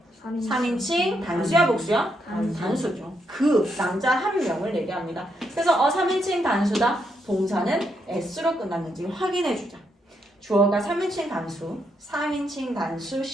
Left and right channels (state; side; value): normal; both; correlation 0.79